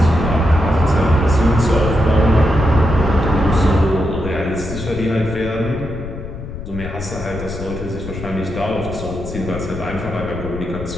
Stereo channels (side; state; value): left; noise; rumble, 10 dB below the sound